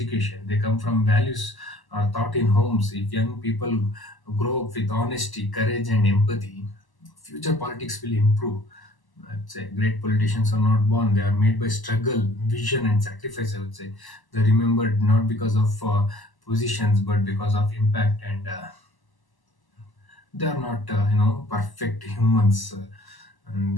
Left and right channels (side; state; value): right; late; 1.0 ms